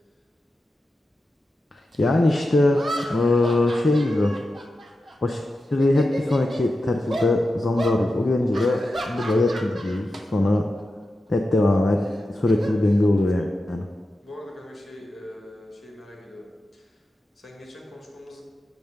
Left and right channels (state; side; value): normal; both; correlation 0.91